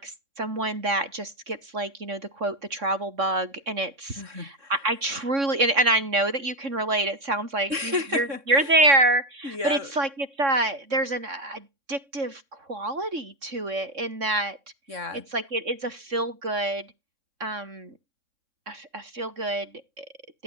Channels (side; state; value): left; late; 3.6 ms